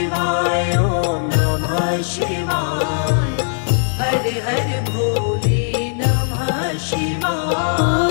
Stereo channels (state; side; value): silent; right; digital silence